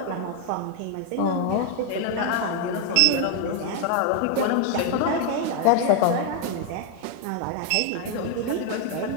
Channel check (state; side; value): different; both; correlation 0.00